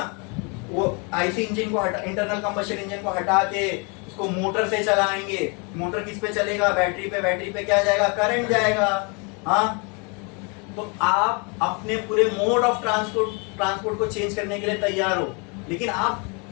वो आईसी इंजन को हटा, इंटरनल कंबशन इंजन को हटा के उसको मोटर से चलाएंगे। मोटर किस पे चलेगा? बैटरी पे। बैटरी पे क्या जाएगा? करंट जाएगा। हाँ, तो आप अपने पूरे मोड ऑफ ट्रांसपोर्ट को चेंज करने के लिए तैयार हो, लेकिन आप,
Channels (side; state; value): right; quieter; 33.0 dB